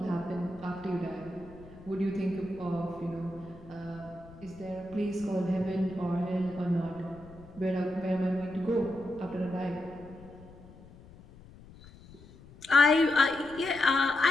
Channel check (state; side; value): noise; left; rumble, 21 dB below the sound